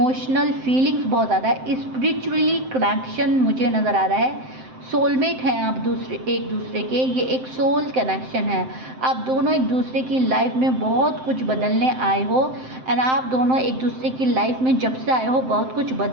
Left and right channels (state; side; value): late; left; 7.7 ms